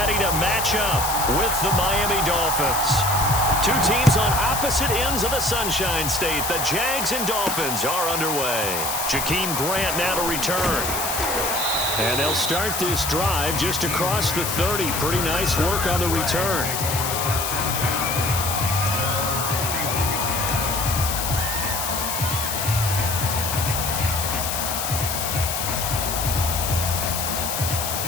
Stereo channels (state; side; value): noise; left; hiss, 2 dB below the sound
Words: to match up with the Miami Dolphins. Two teams on opposite ends of the Sunshine State. The Jags and Dolphins are underway. Jakeem Grant now to return. And they'll start this drive just across the 30. Pretty nice work on the return.